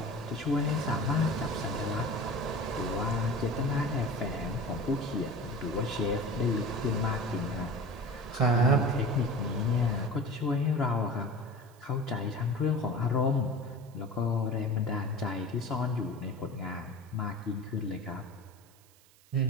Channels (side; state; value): right; noise; hiss, 28 dB below the sound